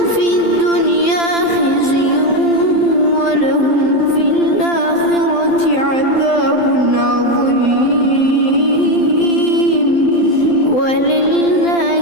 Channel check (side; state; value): right; late; 12 ms